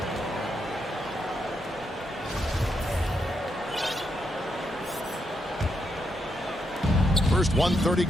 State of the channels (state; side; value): normal; both; correlation 0.81